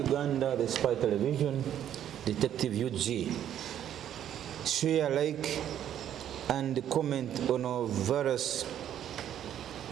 the spy television, Detective UG. Share, like, and comment on our various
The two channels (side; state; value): left; quieter; 10.5 dB